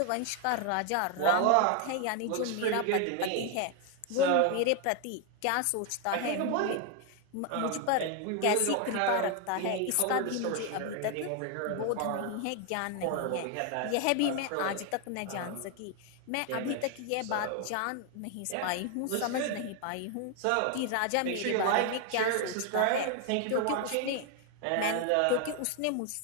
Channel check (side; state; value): both; different; correlation 0.01